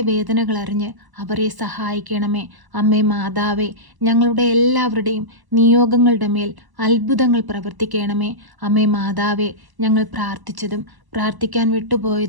അറിഞ്ഞ് അവരെ സഹായിക്കണമേ. അമ്മേ മാതാവേ, ഞങ്ങളുടെ എല്ലാവരുടെയും നിയോഗങ്ങളുടെ മേൽ അത്ഭുതങ്ങൾ പ്രവർത്തിക്കണമേ. അമ്മേ മാതാവേ, ഞങ്ങൾ പ്രാർത്ഥിച്ചതും പ്രാർത്ഥിക്കാൻ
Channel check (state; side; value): late; left; 1.0 ms